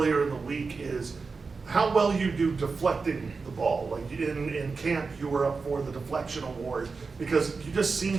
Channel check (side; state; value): left; quieter; 4.5 dB